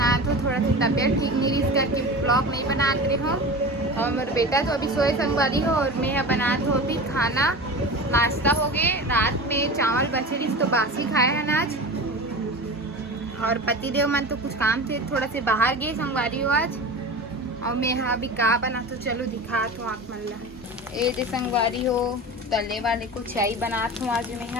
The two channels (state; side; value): normal; both; correlation 0.31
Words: हो, थोड़ा सी तबीयत ठीक नहीं इस करके ब्लॉग नहीं बनात रही हूँ। और मेरा बेटा तो अभी सोए संगवारी हो और मैं बनात हो अभी खाना। नाश्ता हो गए, रात में चावल बचे रही तो बासी खाए हैं आज। और पतिदेव मन तो कुछ काम से थोड़ा से बाहर गए संगवारी हो आज। और मैं यहाँ अभी का बना तो चलो दिखात हूँ आप मन ला। ये दे संगवारी हो तले वाले को चाय बनात हूँ आज मैं